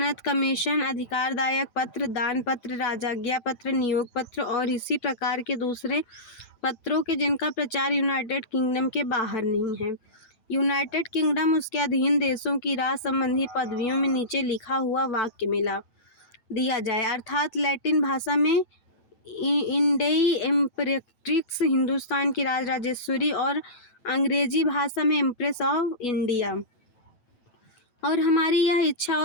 कमीशन, अधिकारदायक पत्र, दान पत्र, राजाज्ञा पत्र, नियोग पत्र और इसी प्रकार के दूसरे पत्रों के जिनका प्रचार यूनाइटेड किंगडम के बाहर नहीं है। यूनाइटेड किंगडम उसके अधीन देशों की राज संबंधी पदवियों में नीचे लिखा हुआ वाक्य मिला दिया जाए, अर्थात लैटिन भाषा में इंडेई एम्परेट्रिक्स हिंदुस्तान की राजेश्वरी और अंग्रेजी भाषा में एम्प्रेस ऑफ इंडिया। और हमारी यह इच्छा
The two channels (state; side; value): late; right; 9.1 ms